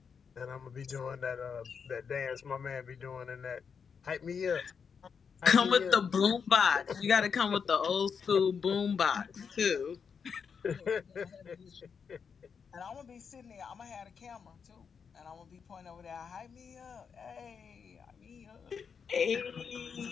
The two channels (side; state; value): right; quieter; 6.3 dB